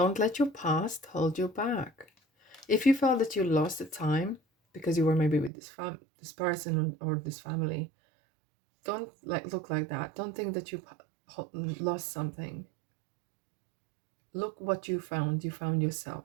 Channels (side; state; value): left; drops out; at 5.5 s